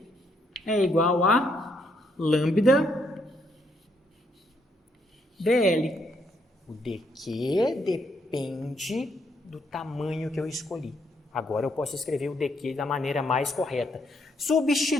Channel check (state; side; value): normal; both; correlation 0.74